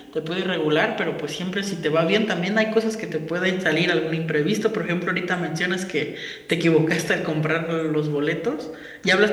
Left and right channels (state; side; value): identical; both; correlation 1.00